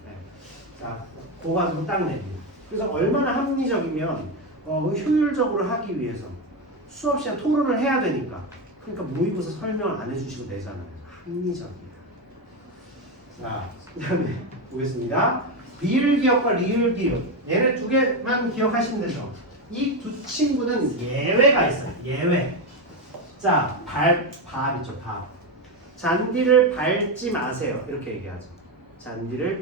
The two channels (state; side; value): normal; both; correlation 0.11